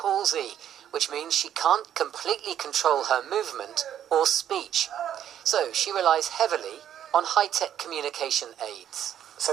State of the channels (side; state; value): left; quieter; 10.2 dB